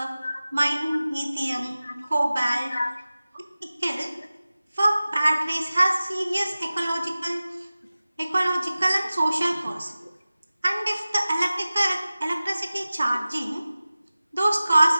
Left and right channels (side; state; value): both; inverted; correlation -0.97